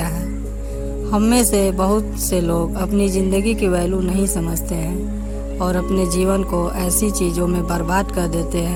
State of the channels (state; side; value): identical; both; correlation 1.00